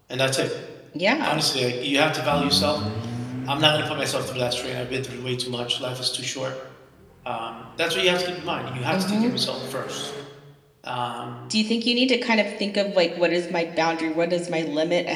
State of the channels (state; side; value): identical; both; correlation 1.00